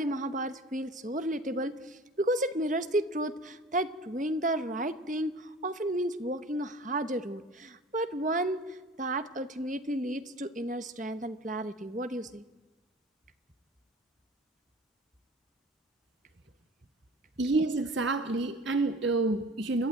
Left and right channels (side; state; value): both; normal; correlation 0.42